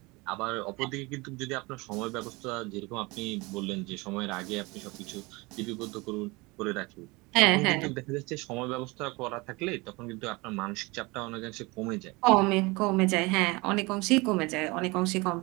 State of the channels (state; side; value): quieter; left; 24.7 dB